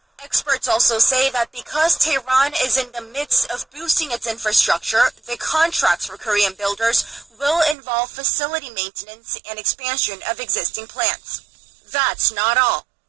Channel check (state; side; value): drops out; left; at 7.8 s